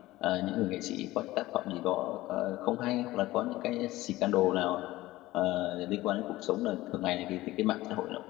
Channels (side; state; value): right; quieter; 17.5 dB